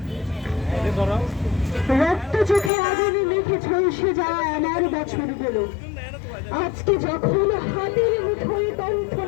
রক্ত চোখে আগুনে মেখে ঝলসে যাওয়া আমার বছরগুলো আজকে যখন হাতের মুঠোয়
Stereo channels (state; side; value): drops out; right; at 2.7 s